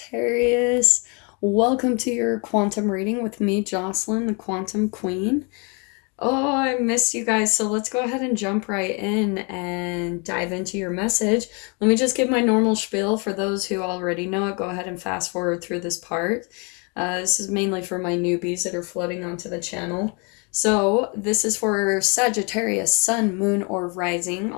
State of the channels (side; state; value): right; quieter; 33.4 dB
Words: Welcome to your quantum reading with me, Jocelyn, the Quantum Queen. Oh, I missed you guys, so let's go ahead and jump right in and dive into your message. Let me just give my normal spiel for those who already know it. Go ahead and fast forward through this part. This is mainly for my newbies that are floating onto the channel. So, this is for Sagittarius, Sun, Moon, or Rising.